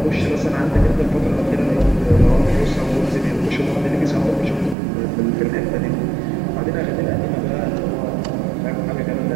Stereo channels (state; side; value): drops out; left; at 4.8 s